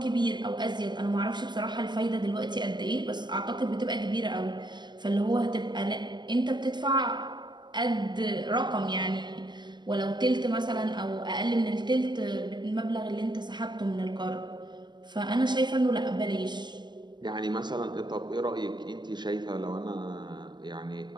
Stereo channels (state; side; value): late; left; 0.22 ms